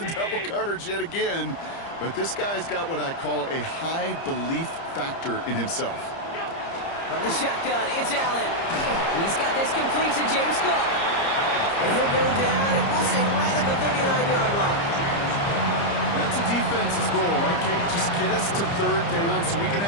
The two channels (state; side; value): late; right; 30 ms